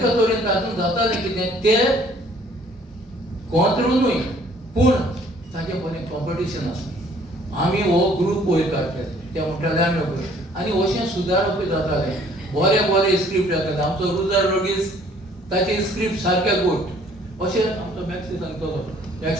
तरेन तातूंत जातालें कितें तें कोंत्रुनूय पूण ताचें बरें कॉम्पिटिशन आसलें. आमी हो ग्रूप वयर काडटाले, ते म्हणटाले आमी आनी अशें सुदारपूय जातालें. बरे स्क्रिप्ट येताले. आमचो रुजार रॉड्रिग्स ताचे स्क्रिप्ट सारके गोट अशें आमचो मॅक्सी सांगतलो.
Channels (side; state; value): both; normal; correlation 0.58